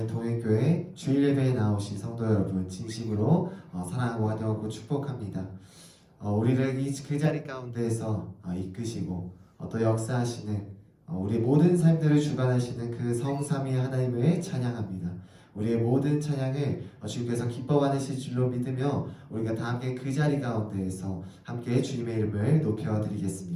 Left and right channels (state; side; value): identical; both; correlation 1.00